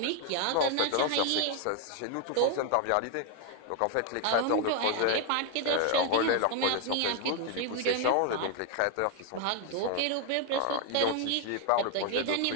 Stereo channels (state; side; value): different; both; correlation 0.00